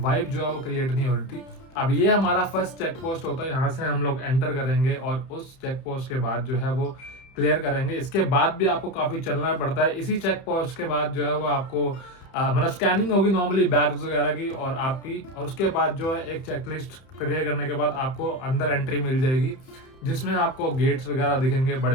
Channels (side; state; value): right; late; 31 ms